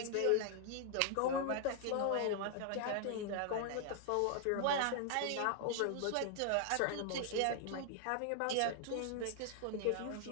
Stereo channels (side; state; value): both; different; correlation 0.00